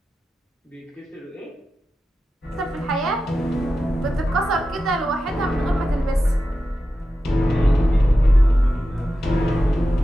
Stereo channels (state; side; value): normal; both; correlation 0.91